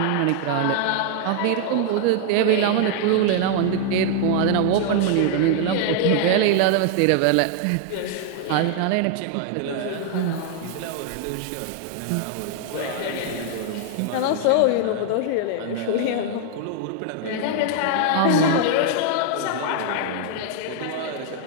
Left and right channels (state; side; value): different; both; correlation 0.00